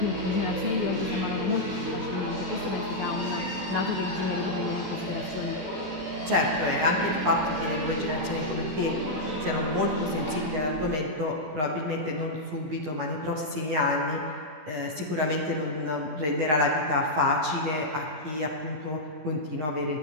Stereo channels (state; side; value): late; left; 13 ms